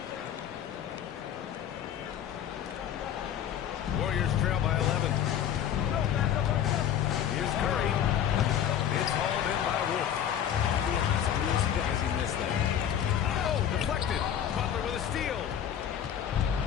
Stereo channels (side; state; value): right; quieter; 9.6 dB